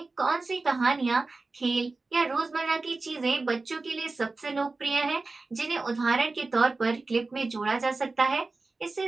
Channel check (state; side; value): quieter; left; 3.6 dB